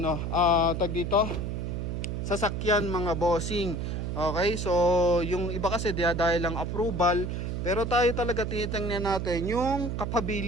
tag dito, sasakyan mga bossing. Okay, so yung iba kasi dahil lang approval, pero tayo talaga tinitingnan natin yung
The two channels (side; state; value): right; noise; hum, 3 dB below the sound